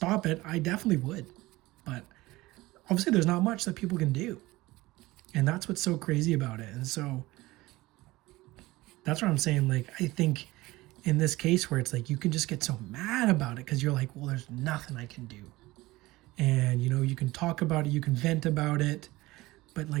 it, I definitely would. But obviously there's not much that people can do. And that's what's so crazy about it. And so that's what I'm saying. Like, I think in this case where it's like you can just get so mad about it because you're like, well, there's nothing I can do. And, you can talk about it, you can vent about it, but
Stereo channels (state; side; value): quieter; left; 19.4 dB